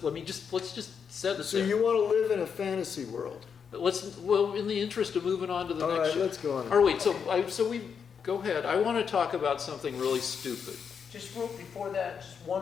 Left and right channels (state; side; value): quieter; right; 6.7 dB